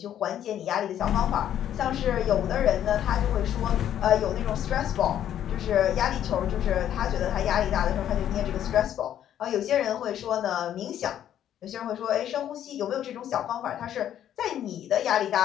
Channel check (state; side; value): quieter; right; 10.7 dB